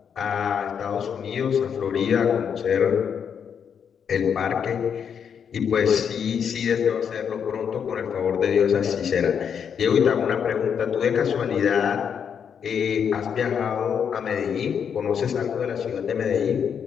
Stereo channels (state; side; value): quieter; right; 7.5 dB